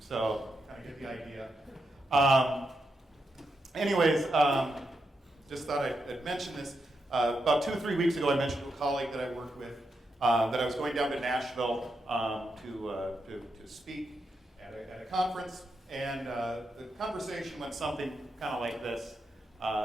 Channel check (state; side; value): normal; both; correlation 0.84